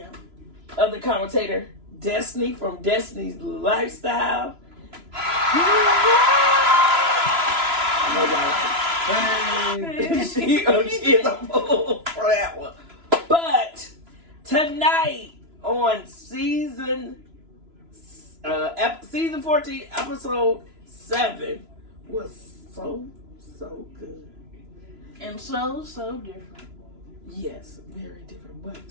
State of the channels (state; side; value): late; left; 3.0 ms